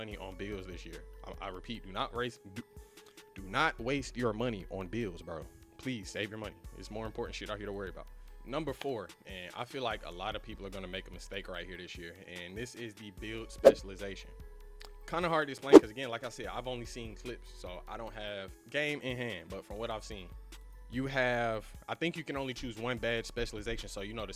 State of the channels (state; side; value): identical; both; correlation 1.00